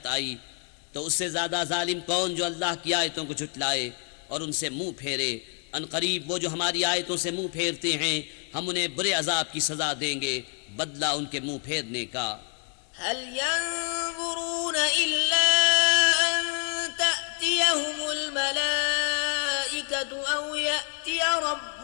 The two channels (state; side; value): quieter; right; 38.5 dB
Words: आई, तो उससे ज़्यादा जालिम कौन जो अल्लाह की आयतों को झुटलाए और उनसे मुँह फेरे। अनकरीब वो जो हमारी आयतों से मुँह फेरते हैं हम उन्हें बुरे अजाब की सज़ा देंगे, बदला उनके मुँह फेरने का। हल यंज़ुरून इल्ला अन तअतियहुमुल मलाइकतु औ यअतिय